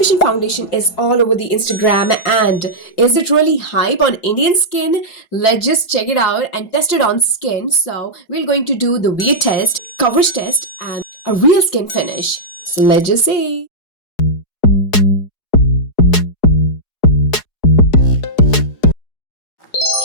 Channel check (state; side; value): late; right; 4.8 ms